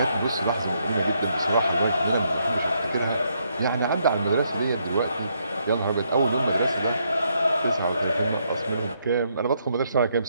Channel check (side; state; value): both; inverted; correlation -0.75